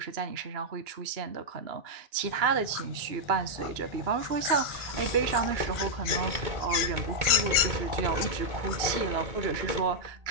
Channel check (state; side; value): late; left; 2.9 ms